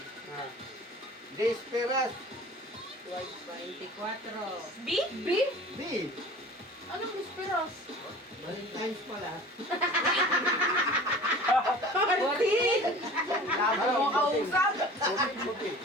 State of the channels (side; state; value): both; normal; correlation 0.42